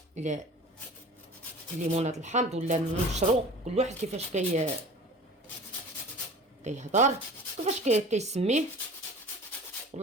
الليمونات الحامض ولا نشرو، كل واحد كيفاش كيهضر، كيفاش كيسميه،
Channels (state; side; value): normal; both; correlation 0.41